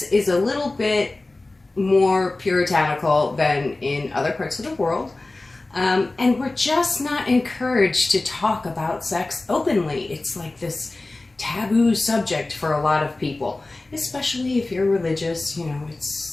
is a little bit more puritanical than in other parts of the world. And we're just not encouraged to talk about sex openly. It's like this taboo subject for a lot of people, especially if you're religious.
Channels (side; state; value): right; quieter; 3.1 dB